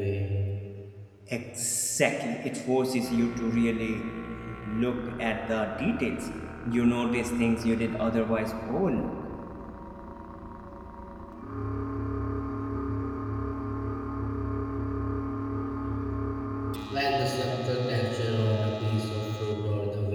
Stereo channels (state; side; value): identical; both; correlation 1.00